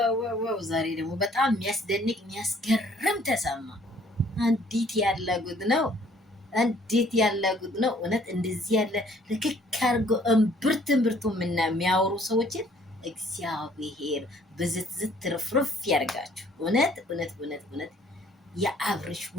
ዋው ዋው! ዛሬ ደግሞ በጣም የሚያስደንቅ የሚያስገርም ተሰማ። እንዴት ያለ ጉድ ነው! እንዴት ያለ ጉድ ነው! እውነት እንደዚህ ያለ ልክክ አድርጎ እምብርት እምብርቱ የሚያወሩ ሰዎችን እግዚአብሔር ብዝትዝት ትርፍርፍ ያርጋችሁ። እውነት እውነት እውነት እውነት የአብርሽ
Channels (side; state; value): both; normal; correlation 0.60